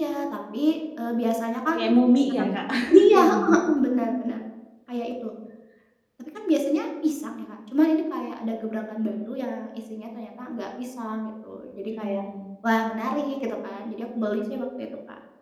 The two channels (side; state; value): both; identical; correlation 1.00